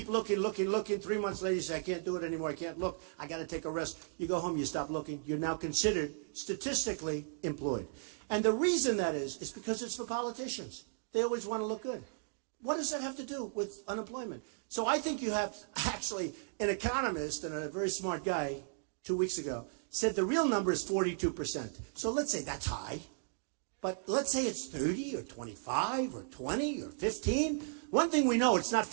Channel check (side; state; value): left; silent; digital silence